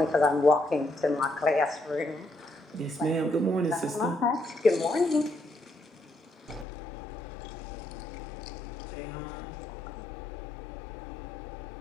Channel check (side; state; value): right; drops out; at 6.7 s